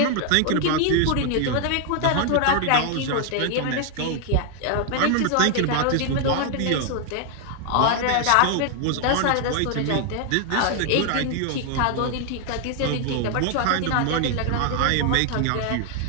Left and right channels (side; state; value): both; different; correlation 0.00